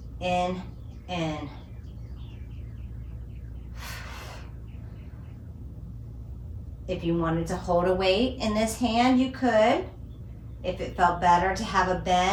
in, in. If you wanted to hold a weight in this hand, you could. If it felt better to have a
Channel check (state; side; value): identical; both; correlation 1.00